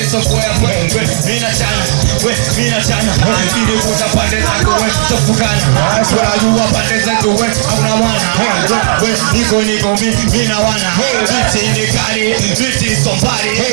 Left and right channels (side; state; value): left; silent; digital silence